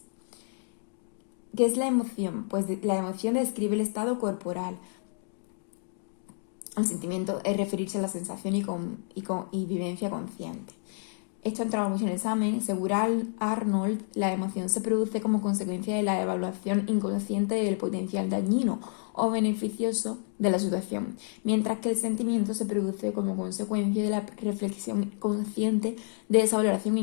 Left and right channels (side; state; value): right; silent; 58 dB below the other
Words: ¿Qué es la emoción? Pues la emoción describe el estado corporal. El sentimiento es referirse a la sensación y vivencia consciente. Esto ha entrado mucho en el examen. Según Arnold, la emoción se produce como consecuencia de la evaluación inconsciente del potencial dañino o beneficioso de la situación, mientras que el sentimiento se produce como consecuencia de la reflexión consciente de esa valoración